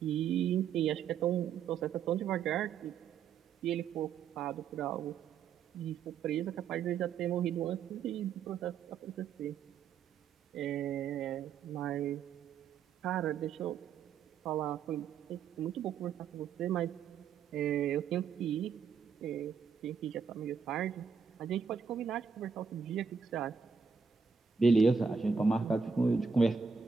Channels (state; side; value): quieter; left; 6.2 dB